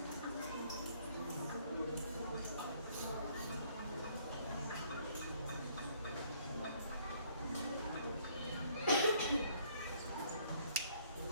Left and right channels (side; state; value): both; inverted; correlation -0.63